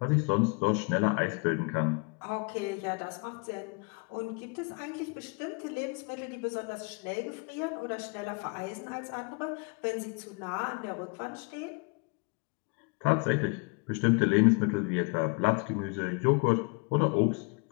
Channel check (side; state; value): right; quieter; 31.3 dB